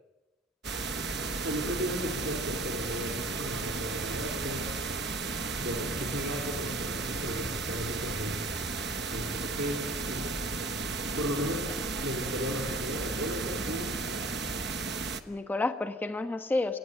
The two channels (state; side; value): normal; both; correlation 0.48